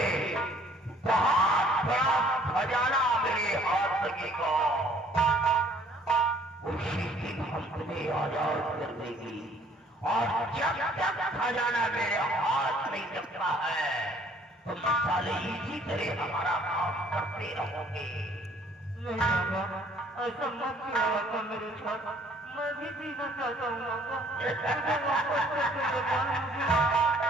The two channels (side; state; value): both; normal; correlation 0.58